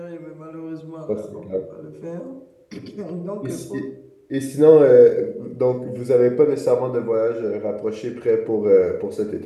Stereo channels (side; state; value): both; identical; correlation 1.00